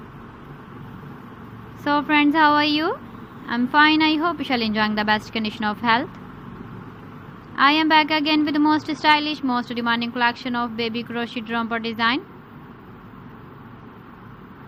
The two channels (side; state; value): both; identical; correlation 1.00